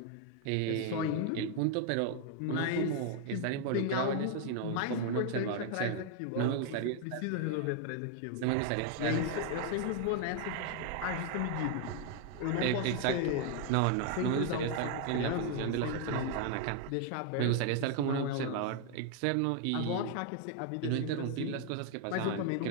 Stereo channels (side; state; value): both; different; correlation 0.00